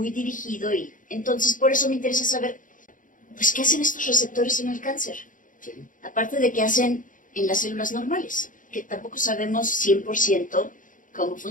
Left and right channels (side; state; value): right; late; 0.38 ms